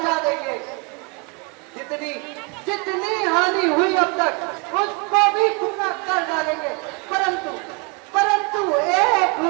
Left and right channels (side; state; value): left; quieter; 31.9 dB